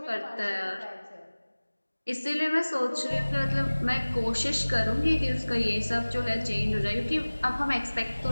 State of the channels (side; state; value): both; inverted; correlation -1.00